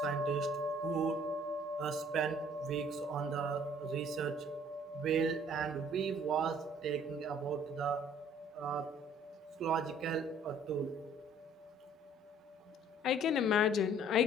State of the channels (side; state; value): both; normal; correlation 0.57